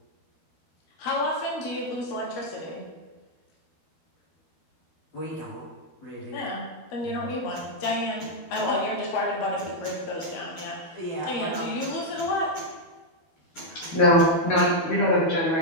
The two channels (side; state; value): right; late; 12 ms